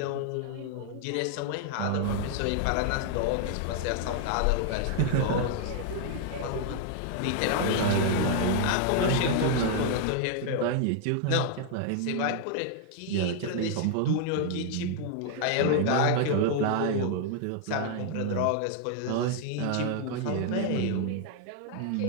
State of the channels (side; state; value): both; different; correlation 0.00